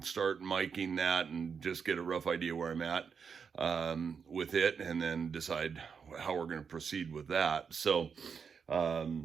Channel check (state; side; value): quieter; left; 6.2 dB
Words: start miking that and just get a rough idea where I'm at with it, and then decide how we're going to proceed with that. So